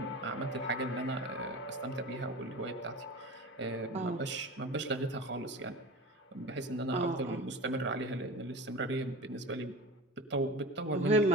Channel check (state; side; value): normal; both; correlation 0.33